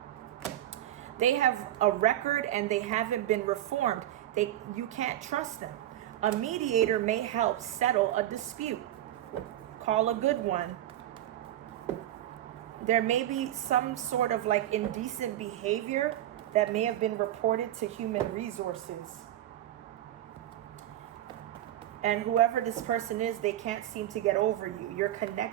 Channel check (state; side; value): quieter; left; 12.9 dB